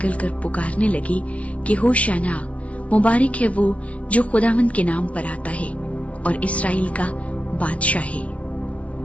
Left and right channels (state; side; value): late; right; 0.065 ms